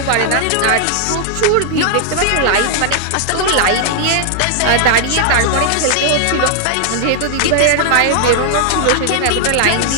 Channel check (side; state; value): both; different; correlation -0.01